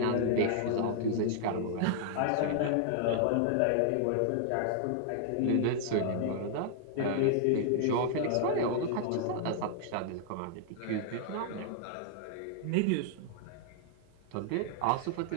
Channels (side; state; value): both; different; correlation -0.01